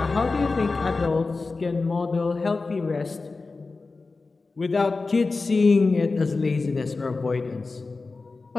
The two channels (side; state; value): right; quieter; 3.9 dB